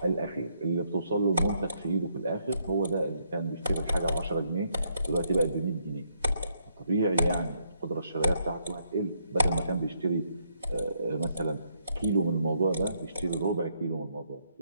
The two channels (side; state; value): both; inverted; correlation -0.74